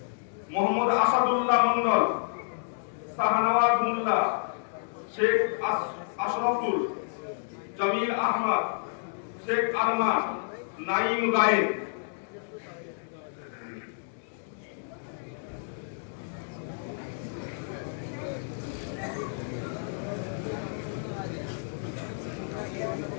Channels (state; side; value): silent; right; digital silence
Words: মোহাম্মদ আসাদুল্লাহ মন্ডল, শাহনওয়াজ মোল্লা, শেখ আশরাফুল, জামিল আহমদ, শেখ আরমান, নাইম গায়েন।